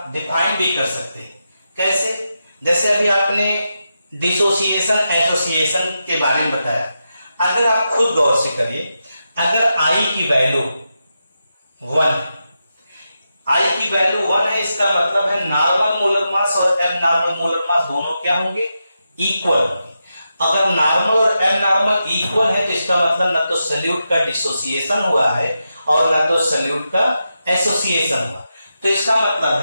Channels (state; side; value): inverted; both; correlation -0.87